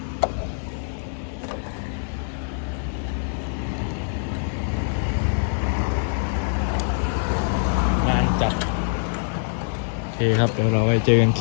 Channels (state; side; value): silent; right; digital silence